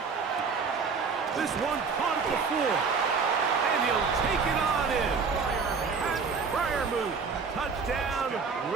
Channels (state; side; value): quieter; left; 5.2 dB